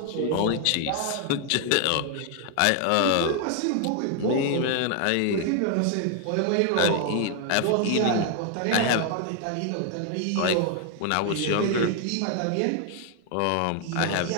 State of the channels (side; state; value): both; different; correlation 0.00